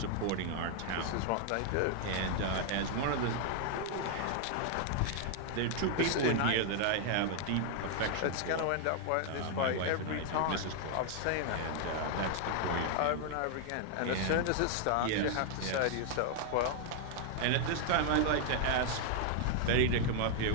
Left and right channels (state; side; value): different; both; correlation 0.00